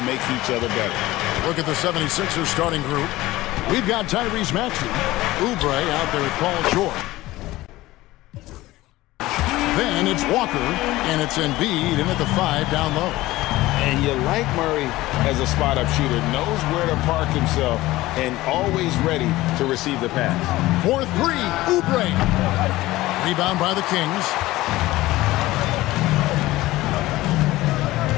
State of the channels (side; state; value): right; quieter; 17.8 dB